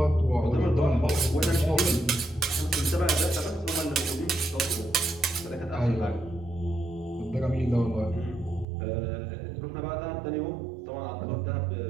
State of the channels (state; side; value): drops out; left; at 8.7 s